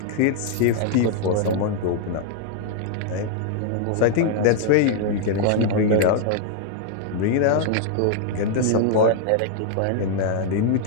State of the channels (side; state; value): both; different; correlation -0.01